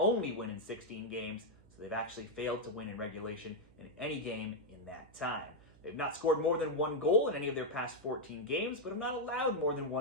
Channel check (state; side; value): noise; right; hum, 25 dB below the sound